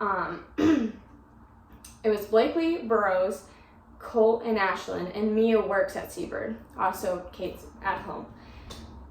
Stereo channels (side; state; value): both; identical; correlation 1.00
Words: Burrows, Colt, and Ashlyn, and Mia works at Seabird. Also, Kate's at home.